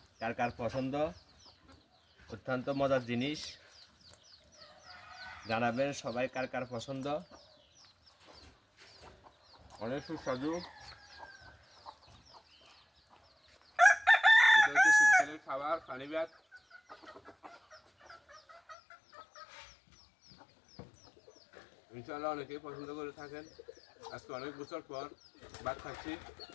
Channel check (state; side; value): drops out; right; at 18.8 s